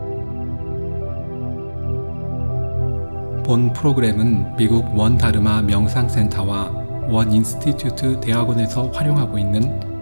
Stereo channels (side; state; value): both; inverted; correlation -1.00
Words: 본 프로그램은 미국 원 다르마 명상센터와 원 인스티튜트 대학원에서 활용하고